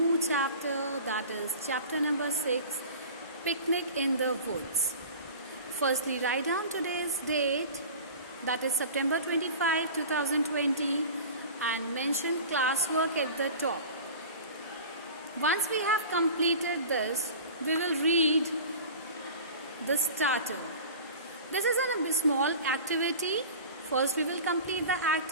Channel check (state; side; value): inverted; both; correlation -0.38